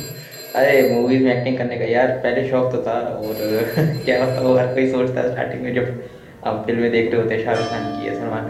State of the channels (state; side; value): identical; both; correlation 1.00